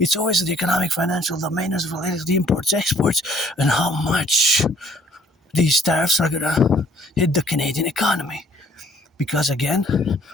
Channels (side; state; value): both; normal; correlation 0.60